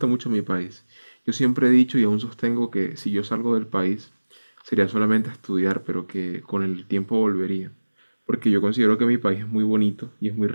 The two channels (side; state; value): both; inverted; correlation -1.00